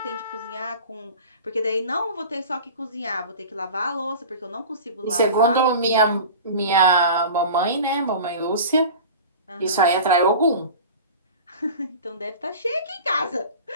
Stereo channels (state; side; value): inverted; both; correlation -0.36